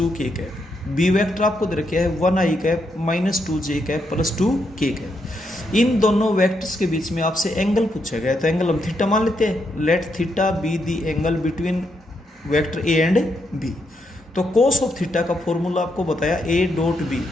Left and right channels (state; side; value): normal; both; correlation 0.80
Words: K cap, B vector आपको दे रखे है 1 I cap -2 J cap plus 2 K cap. इन दोनों वेक्टर्स के बीच में आपसे एंगल पूछा गया है, तो एंगल हम थीटा मान लेते हैं। Let theta be the angle between vector A and B. तो कोस ऑफ थीटा का फॉर्मूला आपको बताया A dot B